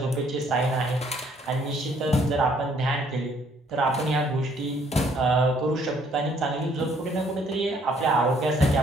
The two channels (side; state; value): both; normal; correlation 0.64